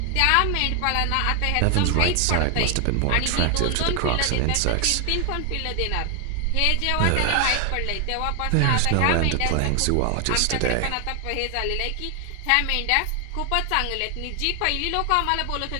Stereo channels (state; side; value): different; both; correlation 0.00